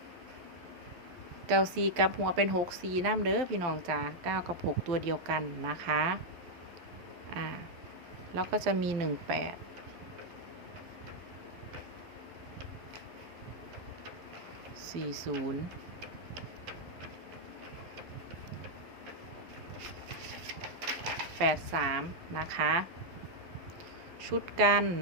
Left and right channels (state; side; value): late; left; 12 ms